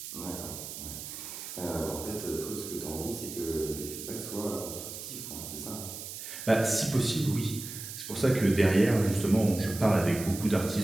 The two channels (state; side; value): noise; right; hiss, 9 dB below the sound